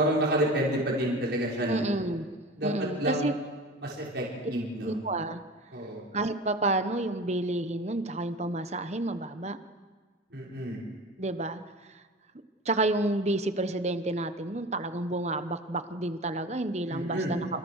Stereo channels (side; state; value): both; normal; correlation 0.34